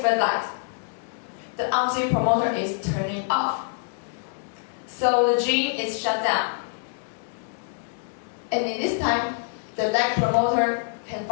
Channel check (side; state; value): right; silent; digital silence